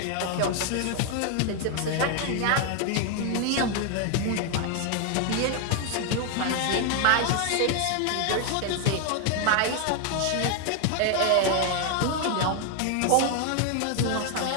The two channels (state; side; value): different; both; correlation 0.00